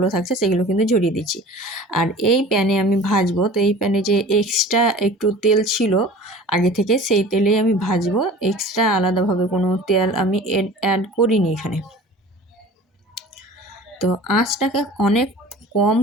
থাকছে সেগুলো কিন্তু ঝরিয়ে দিচ্ছি। আর এই প্যানে আমি ভাজবো, তো এই প্যানে যে এক্সট্রা একটু তেল ছিল আগে থেকে, সেই তেলেই আমি ভাজবো। এক্সট্রা আলাদাভাবে কোনো তেল আমি অ্যাড করিনি এখানে। তো আঁচটাকে অনেক কম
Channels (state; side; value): normal; both; correlation 0.42